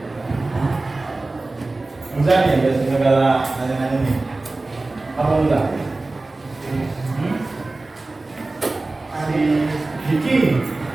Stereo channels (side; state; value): left; quieter; 3.2 dB